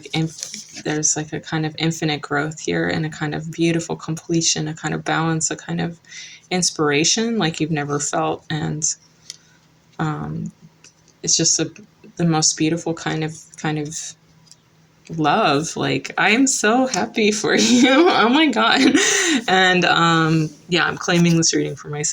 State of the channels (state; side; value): identical; both; correlation 1.00